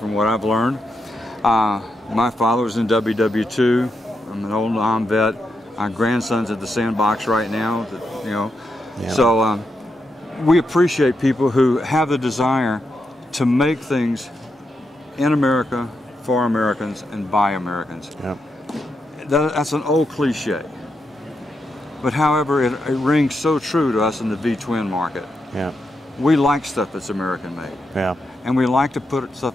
what I've learned. My father was in WW2. I'm an old Nam vet. My grandson's at the sandbox right now, you know. Yeah. So we appreciate people who have the desire to make things in America, for Americans, and by Americans. Yep. That's an old cliche. But however, it rings so true to us in the V-twin market. Yeah. We like stuff that's American made. Yeah. And we like to put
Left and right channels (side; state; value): both; normal; correlation 0.84